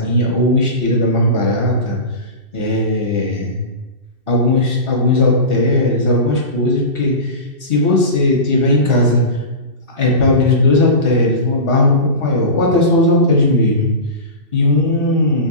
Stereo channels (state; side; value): late; left; 2.7 ms